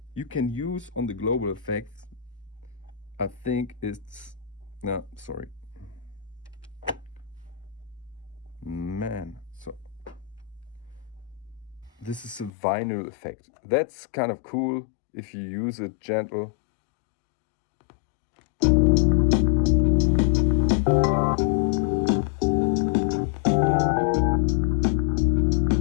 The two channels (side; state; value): right; drops out; at 12.5 s